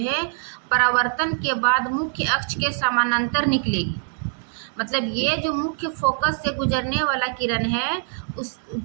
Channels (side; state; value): left; silent; 63 dB below the other